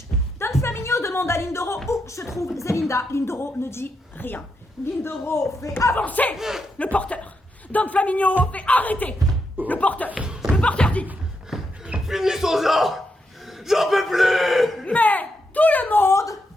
Don Flaminio demande à Lindoro où se trouve Zelinda. Lindoro ne dit rien. Lindoro fait avancer le porteur. Don Flaminio fait arrêter le porteur. Le porteur dit Finissons-en! J'en peux plus! mais tout le monde.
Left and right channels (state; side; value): normal; both; correlation 0.83